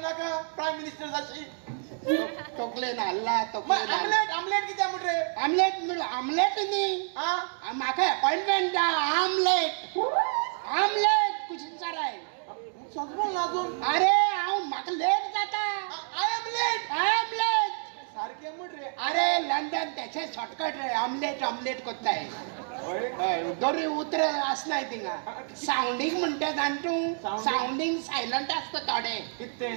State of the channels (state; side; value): silent; left; 59 dB below the other